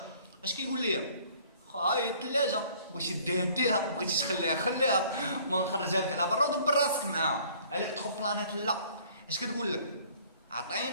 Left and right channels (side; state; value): both; inverted; correlation -0.55